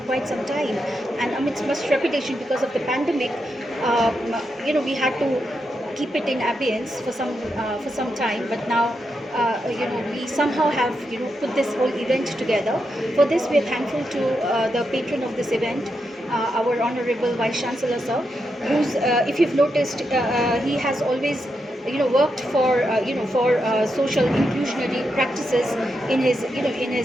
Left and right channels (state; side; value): normal; both; correlation 0.84